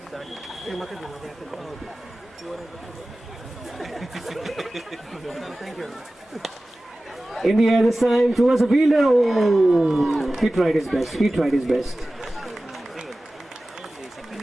in the air this time towards the fielder. Oh, he tried his best.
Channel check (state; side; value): normal; both; correlation 0.96